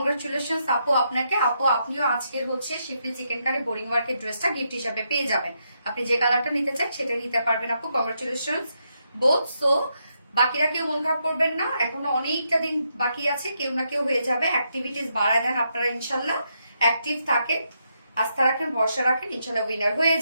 আপু আপনাকে। আপু আপনিও আজকের হচ্ছে শিফলি চিকেন কারি বোরিং ওয়ার্কের ড্রেসটা গিফট হিসাবে পেয়ে যাবেন। আপনি যে কালারটা নিতে চান সেটাই নিতে পারবেন আপু। Congratulations both. সো বাকিরা কেউ মন খারাপ করবেন না, এখনো অনেকটা দিন বাকি আছে, কেউ না কেউ হয়ে যাবে। অ্যাক্টিভিটিস বাড়ায় দেন আপনারা, ইনশাল্লাহ অ্যাক্টিভ থাকেন, আস্থা রাখেন, ভরসা রাখেন, ইনশাল্লাহ উইনার হয়ে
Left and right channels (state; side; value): inverted; both; correlation -0.80